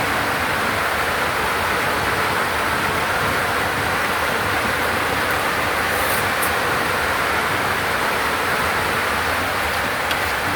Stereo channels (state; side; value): identical; both; correlation 1.00